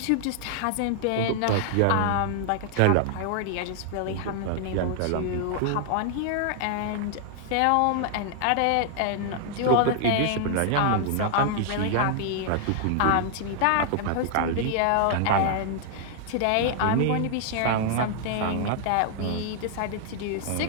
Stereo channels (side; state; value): both; different; correlation 0.00